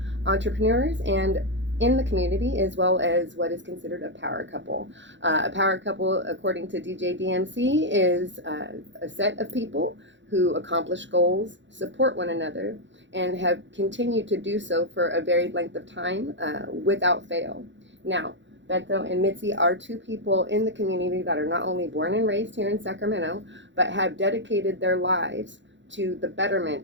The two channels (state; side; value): late; left; 0.54 ms